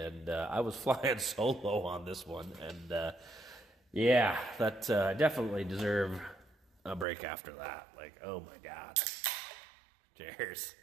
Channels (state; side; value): drops out; left; at 7.1 s